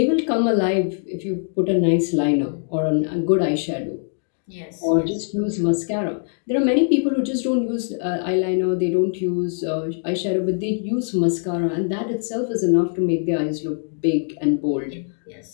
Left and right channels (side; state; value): right; silent; 64 dB below the other